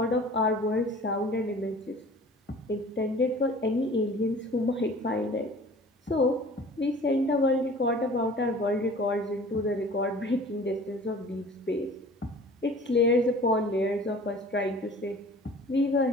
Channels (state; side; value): normal; both; correlation 0.46